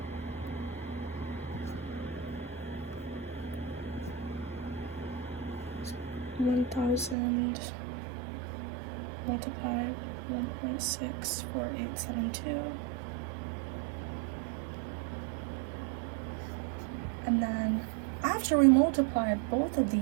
So 1,000 multiplied 1.64872, and then after we multiply both of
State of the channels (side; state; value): left; drops out; at 7.2 s